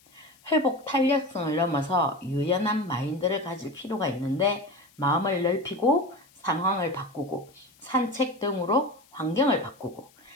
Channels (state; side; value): noise; left; hiss, 29 dB below the sound